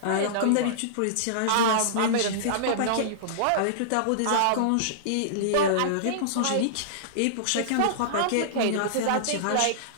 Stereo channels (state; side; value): different; both; correlation -0.02